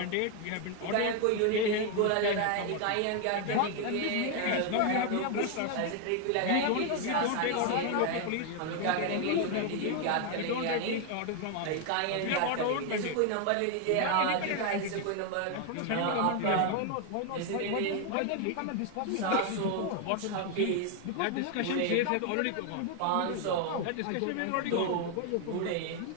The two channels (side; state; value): both; different; correlation 0.01